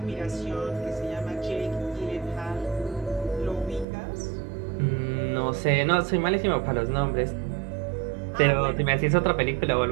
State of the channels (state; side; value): drops out; left; at 3.9 s